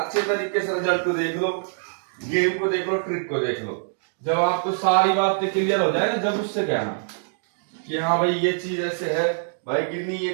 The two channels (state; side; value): silent; left; digital silence